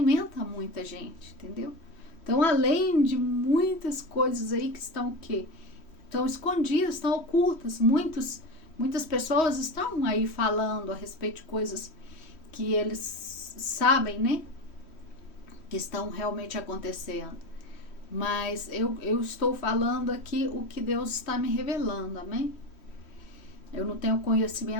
muita gente, entendeu? Então, além de muitas coisas aí que estão o quê? Estão escondidas, estão ocultas. Muitas pessoas estão aí falando a respeito de coisas que eles sabem, né, que estão realmente acontecendo, mas eu estou falando aqui o que Deus está me revelando, amém? Eu não tenho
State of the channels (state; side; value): late; right; 3.1 ms